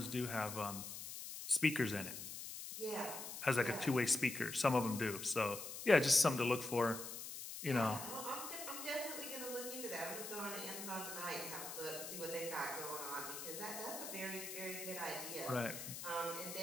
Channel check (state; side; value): noise; left; hiss, 8 dB below the sound